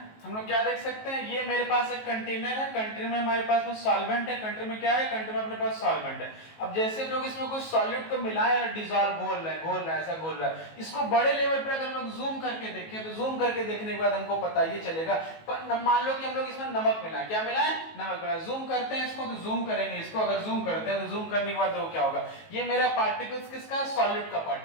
हम लोग क्या देख सकते हैं, ये मेरे पास एक कंटेनर है, कंटेनर में हमारे पास में सॉल्वेंट है, कंटेनर में क्या है, कंटेनर में अपने पास सॉल्वेंट है। अब जैसे हम लोग इसमें कुछ सॉल्यूट को मिलाए और डिसॉल्व घोल रहे हैं, ऐसा घोल रहा है। इसको बड़े लेवल पर अगर हम लोग जूम करके देखें तो जूम करके देखने के बाद हमको पता ये चलेगा। पर मान लो कि हम लोग इसमें नमक मिलाए, क्या मिलाए, नमक मिलाए। जूम करते हैं इसको, तो जूम करेंगे इसको, अगर जूम करते हैं तो जूम करने के बाद तो क्या होगा, ये मेरा पार्टिकल्स किसका, सॉल्यूट का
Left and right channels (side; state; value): right; late; 19 ms